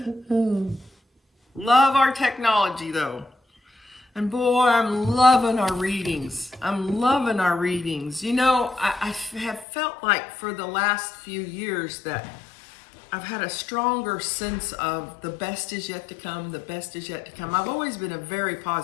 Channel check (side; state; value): right; drops out; at 9.7 s